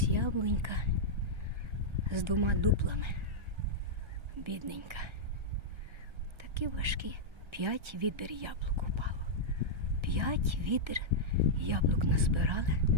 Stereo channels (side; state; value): left; late; 1.4 ms